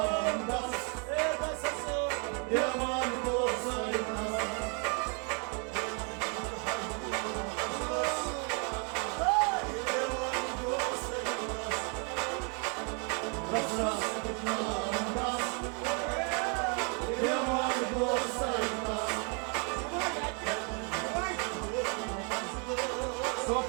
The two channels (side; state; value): left; quieter; 36.8 dB